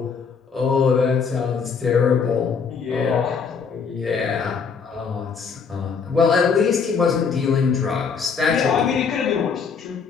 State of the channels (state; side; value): quieter; right; 5.9 dB